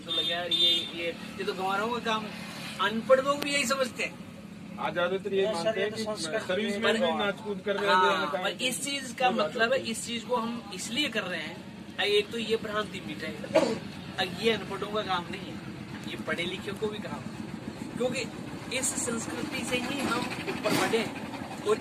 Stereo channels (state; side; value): identical; both; correlation 1.00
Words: लगे यार ये तो गंवारों का काम। अनपढ़ लोग भी यही समझते हैं। आज ज्यादातर ये मानते हैं कि सर्विस में भी नाच कूद कर रहे हैं। पर इस चीज का मतलब है, इस चीज को हम इसलिए कर रहे हैं, एक तो ये भ्रांति मिटाएगा, ये अनपढ़ों का काम नहीं है, ये पढ़े लिखे को भी काम है। क्योंकि इस संस्कृति से ही हम ऊपर बढ़े